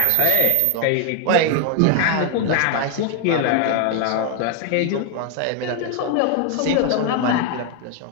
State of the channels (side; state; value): both; different; correlation 0.01